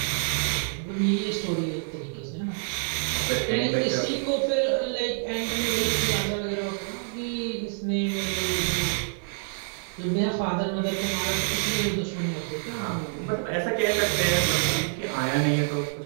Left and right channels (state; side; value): silent; left; digital silence